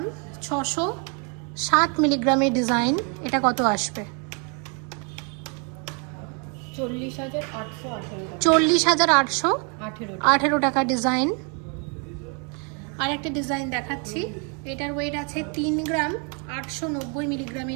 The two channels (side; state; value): left; quieter; 36.7 dB